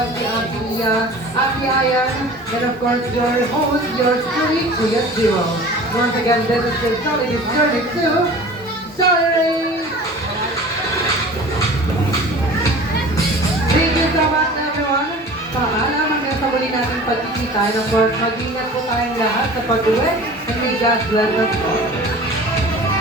si Ate Mia, Ate Ayan, and of course your host, yours truly, Kuya Zero. Once again, this is your Jollibee journey to Jollibee! Thank you so much everyone. Paalam hanggang sa sa muli nating pagkikita. And of course, mag-ingat po tayong lahat sa pag-uwi. And may God bless us all.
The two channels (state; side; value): normal; both; correlation 0.41